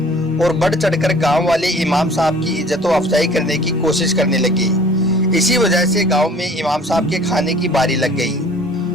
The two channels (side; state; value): both; normal; correlation 0.50